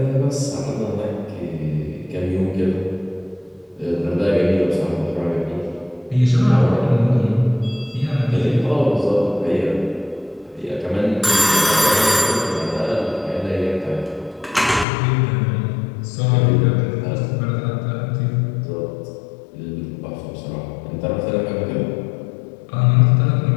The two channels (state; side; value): drops out; right; at 14.9 s